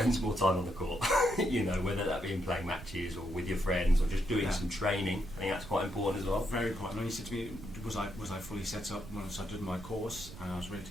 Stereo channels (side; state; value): right; noise; rumble, 14 dB below the sound